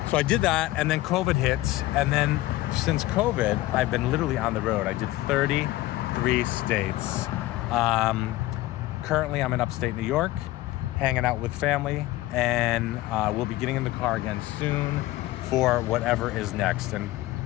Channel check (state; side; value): quieter; right; 17.0 dB